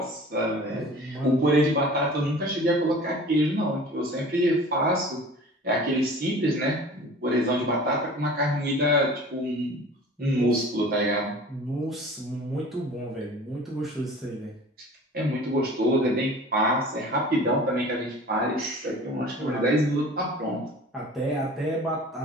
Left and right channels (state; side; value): normal; both; correlation 0.43